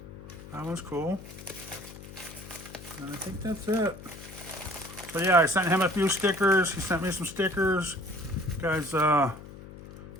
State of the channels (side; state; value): left; noise; hum, 15 dB below the sound